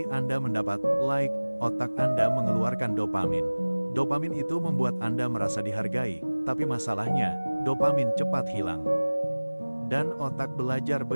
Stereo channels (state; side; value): inverted; both; correlation -1.00